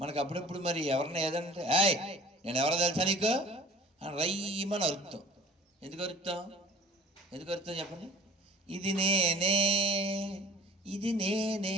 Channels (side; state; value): both; normal; correlation 0.46